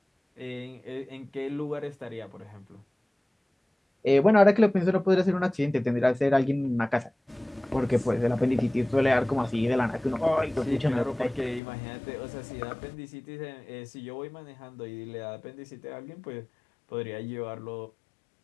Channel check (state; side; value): drops out; right; at 11.6 s